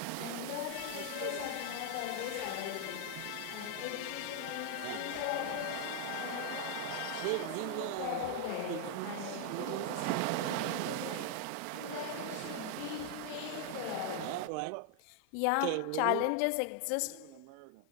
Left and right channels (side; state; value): both; different; correlation 0.00